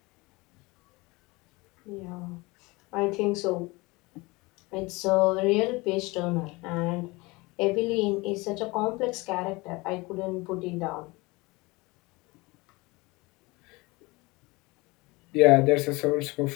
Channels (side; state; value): right; quieter; 23.8 dB